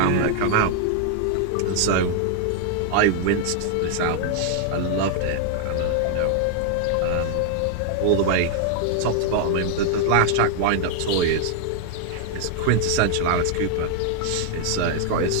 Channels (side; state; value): both; different; correlation 0.00